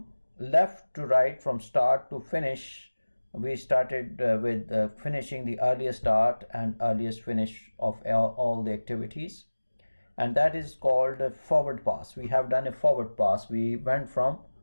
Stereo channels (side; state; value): both; inverted; correlation -1.00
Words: left to right, from start to finish. We started with finishing the earliest start and earliest finish of all the activities, and that is called a forward pass. We have done a forward pass. We went from